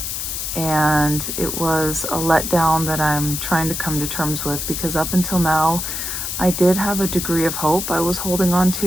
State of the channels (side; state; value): left; noise; hiss, 4 dB below the sound